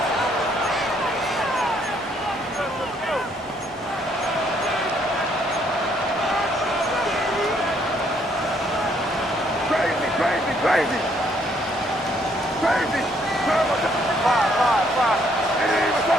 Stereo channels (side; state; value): both; normal; correlation 0.68